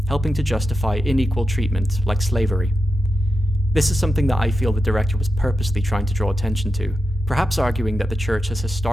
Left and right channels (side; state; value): both; normal; correlation 0.89